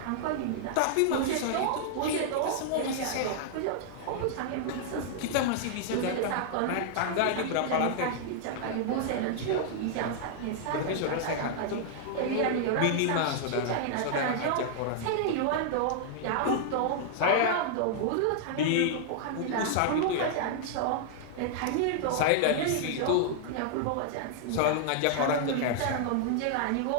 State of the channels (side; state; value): both; different; correlation -0.01